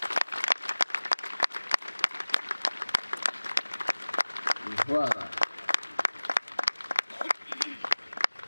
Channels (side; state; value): both; inverted; correlation -1.00